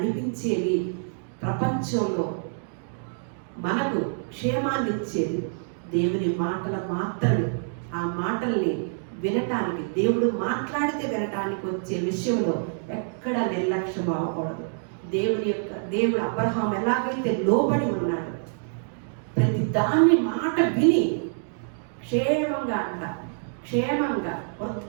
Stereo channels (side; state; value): left; silent; digital silence